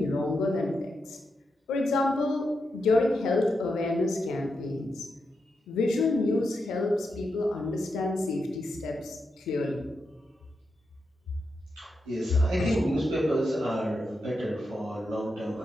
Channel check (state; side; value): normal; both; correlation 0.86